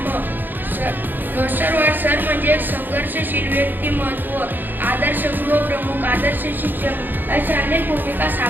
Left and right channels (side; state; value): left; late; 0.091 ms